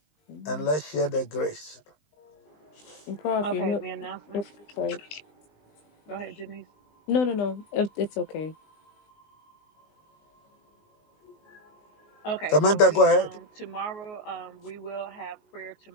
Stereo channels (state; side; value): late; right; 19 ms